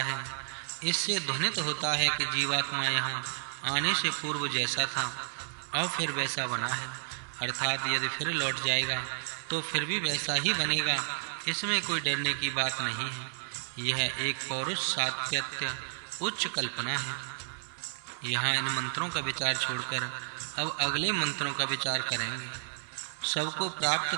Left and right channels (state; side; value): silent; left; digital silence